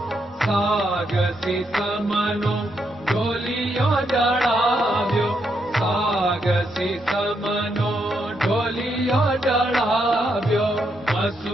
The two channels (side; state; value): both; normal; correlation 0.79